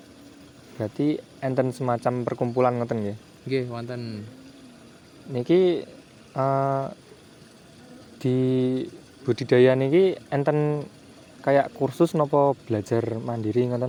Berarti enten semacam perkumpulan ngoten nggih. Nggih, wonten. Niki di budidaya niki enten kayak kursus napa belajar mandiri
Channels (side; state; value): both; identical; correlation 1.00